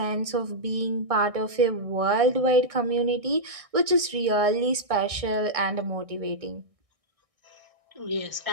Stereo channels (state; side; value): late; left; 1.6 ms